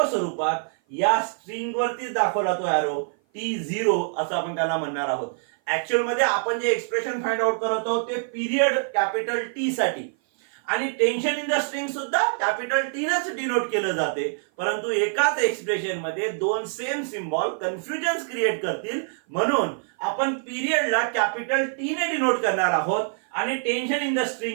स्वरूपात या स्ट्रिंग वरतीच दाखवला तो एरो T0 असं आपण त्याला म्हणणार आहोत. ऍक्च्युअल मध्ये आपण जे एक्सप्रेशन फाइंड आउट करत आहोत ते पिरियड कॅपिटल टी साठी आणि टेन्शन इन द स्ट्रिंग सुद्धा कॅपिटल टी नच डिनोट केलं जाते. परंतु एकाच एक्सप्रेशन मध्ये दोन सेम सिम्बॉल कन्फ्युजन क्रिएट करतील, म्हणून आपण पिरियडला कॅपिटल टी ने डिनोट करणार आहोत आणि टेन्शन इन द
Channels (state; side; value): silent; left; 56 dB below the other